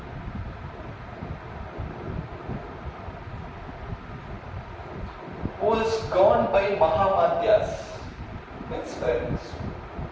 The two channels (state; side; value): identical; both; correlation 1.00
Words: Who is governed by Mahamadhyas. Means friends.